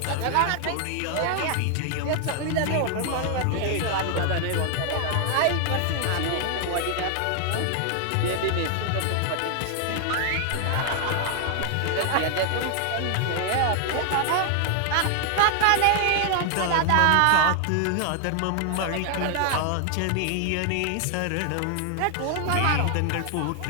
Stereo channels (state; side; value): different; both; correlation 0.00